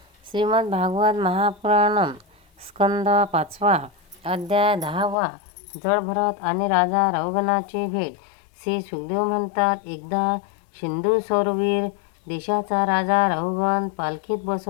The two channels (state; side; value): drops out; right; at 5.2 s